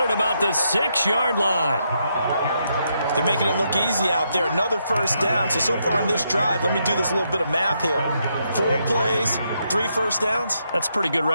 at about the 6-yard line. They're making it look easy out there. Another first down. So far on this drive, let me do this little bit of math here. 4 plays, 3 first downs. That's a pretty good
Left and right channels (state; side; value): inverted; both; correlation -0.79